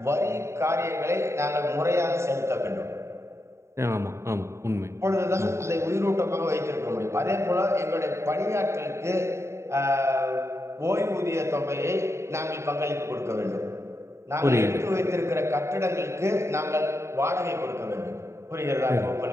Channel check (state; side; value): late; left; 0.13 ms